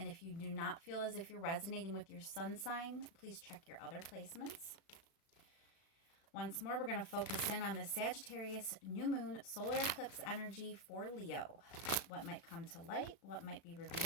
if you do not feel as if you're resonating with your sun sign, please check your other placements. Once more, we're going to focus in on the Sagittarius new moon solar eclipse energy for Leo. What might come to light, what might be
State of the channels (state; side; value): late; right; 36 ms